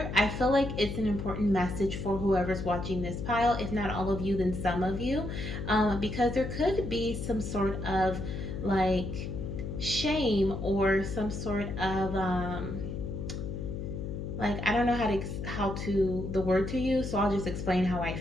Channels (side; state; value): left; noise; hum, 5 dB below the sound